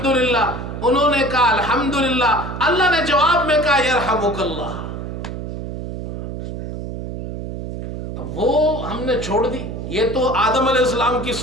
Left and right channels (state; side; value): noise; right; hum, 7 dB below the sound